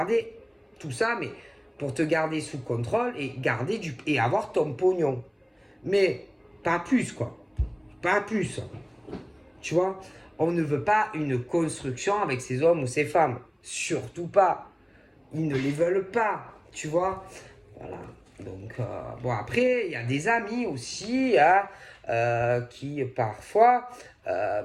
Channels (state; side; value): identical; both; correlation 1.00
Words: tout ça, mais pour te garder sous contrôle et garder et avoir ton pognon, mais pas plus quoi, pas plus. Tu vois, on ne veut pas une construction avec ces hommes ou ces femmes, surtout pas. Ils ne les veulent pas, tu vois. Voilà. Donc, bon, après, il y a des amis aussi hein, qui, parfois,